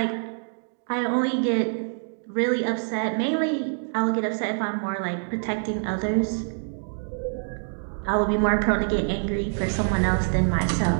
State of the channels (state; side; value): silent; left; 60 dB below the other